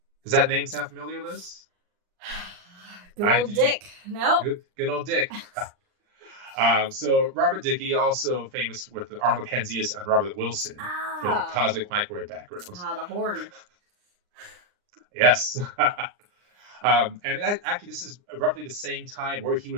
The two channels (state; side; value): late; left; 39 ms